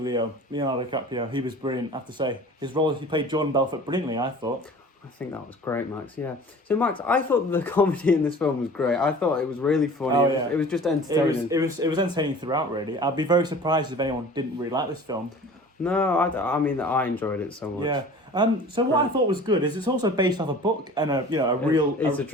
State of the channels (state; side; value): normal; both; correlation 0.43